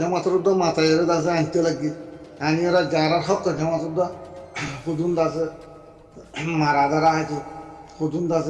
মাথায় আছে আনতে লাগি আনি ওরা যারা হক জমাতর হুদুন আছে মারা দ্বারা হয়তো হুদুন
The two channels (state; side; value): identical; both; correlation 1.00